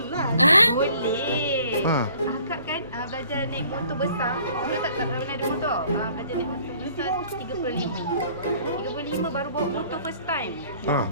Boleh. Akak kan belajar naik motor besar. Dulu tak pernah ada motor. Belajar naik motor besar 35 baru bawa motor first time.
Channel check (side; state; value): both; inverted; correlation -0.56